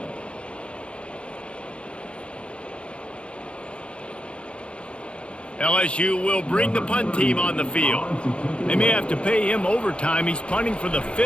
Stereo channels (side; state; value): right; late; 0.058 ms